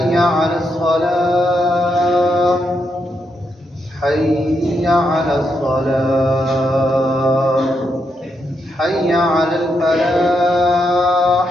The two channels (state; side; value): normal; both; correlation 0.81